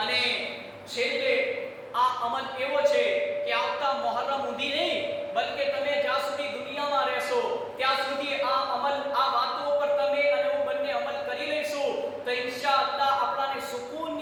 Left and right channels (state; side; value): identical; both; correlation 1.00